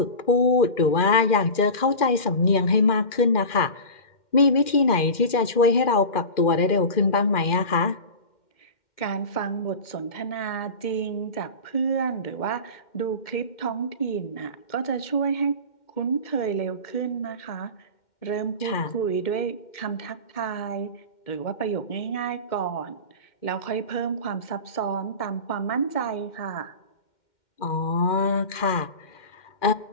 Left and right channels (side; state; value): right; late; 2.1 ms